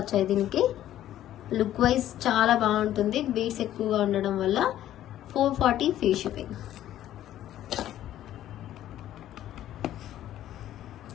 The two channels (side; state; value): right; quieter; 12.5 dB